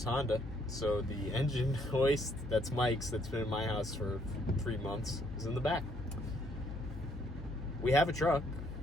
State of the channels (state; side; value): noise; left; hum, 11 dB below the sound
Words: Honda. So the engine hoist, that's Mike's, that's been in my house for 3 months, is in the back. We have a truck.